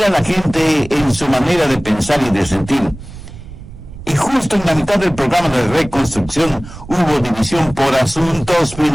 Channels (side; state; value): right; noise; rumble, 15 dB below the sound